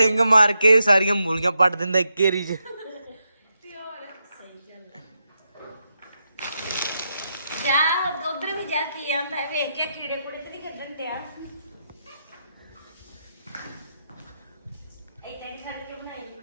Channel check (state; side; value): inverted; both; correlation -0.85